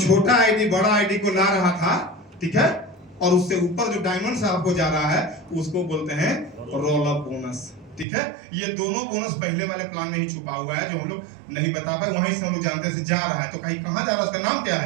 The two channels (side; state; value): left; drops out; at 8.1 s